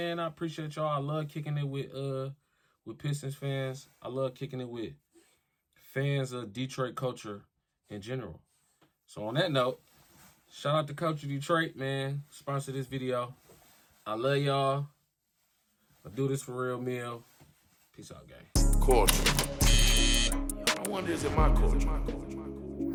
I appreciate y'all. I love kicking it with Pistons fans. I love kicking it with fans of Detroit culture in general. So on that note, shout out to Culture Detroit, man. Sponsor this video. I love y'all. I do this for real meal. Peace out, gang. Culture. I wonder, is it my culture?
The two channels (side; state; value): both; identical; correlation 1.00